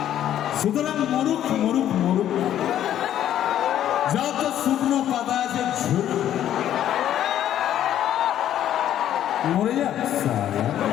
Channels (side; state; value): right; quieter; 11.2 dB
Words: সুতরাং মরুক মরুক মরুক যত শুকনো পাতা আছে ঝুল মরে যাক সারা।